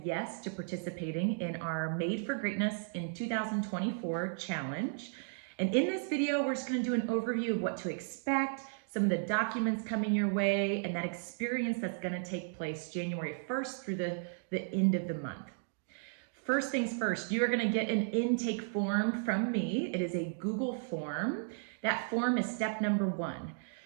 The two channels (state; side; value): silent; left; digital silence